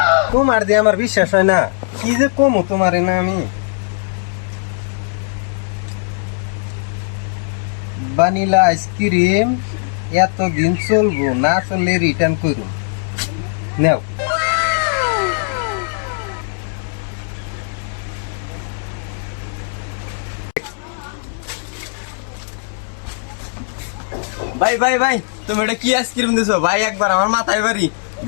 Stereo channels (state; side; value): silent; right; digital silence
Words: তোমার দিয়ে আমার বিশ্বাস হয় না, কি যে কমু তোমারে না আমি। ভানিলা আইসক্রিম এতদিন চলবো না, চললে রিটার্ন করুন। নাও। ভাই ভাই ভাই তুমি এটা কি আইসক্রিম দিছো ভাই? একবার আমার মাথায় বাড়ি